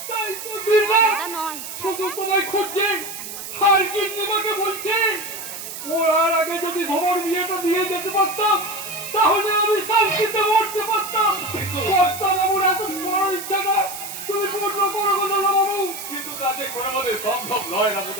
তাই তো দিনরাত দাদা নয়। শুধু তোমায় খুঁজছে, আর গিন্নিমাকে বলছে ওর আগে যদি ধর বিয়েটা দিয়ে যেতে পারতাম তাহলে আমি শান্তিতে মরতে পারতাম। কর্তা বাবুর এত বড় ইচ্ছা না, তুমি পূর্ণ করো গো দাদা বাবু। কিন্তু কাজে করে আমাদের সম্ভব নয়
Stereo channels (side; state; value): right; noise; hiss, 9 dB below the sound